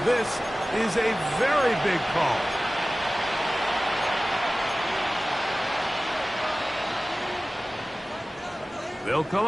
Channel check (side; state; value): both; normal; correlation 0.97